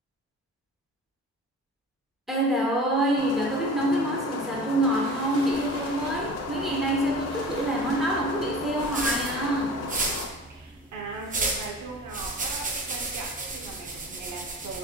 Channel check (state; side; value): normal; both; correlation 0.39